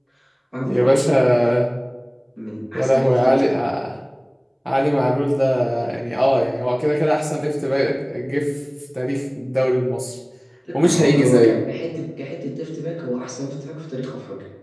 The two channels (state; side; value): identical; both; correlation 1.00